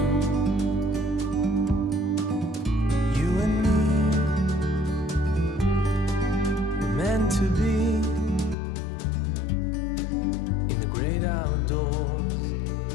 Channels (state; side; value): drops out; right; at 8.6 s